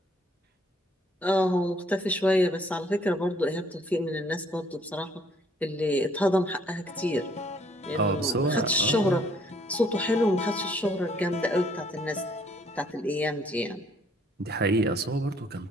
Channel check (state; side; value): normal; both; correlation 0.63